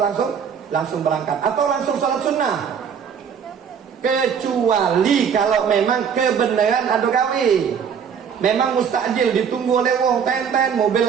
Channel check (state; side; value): quieter; left; 7.3 dB